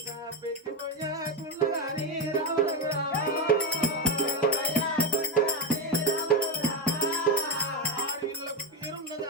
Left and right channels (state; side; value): normal; both; correlation 0.11